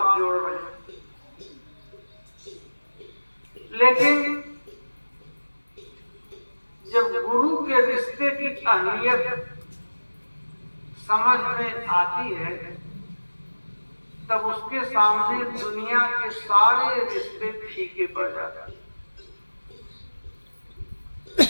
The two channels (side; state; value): both; inverted; correlation -1.00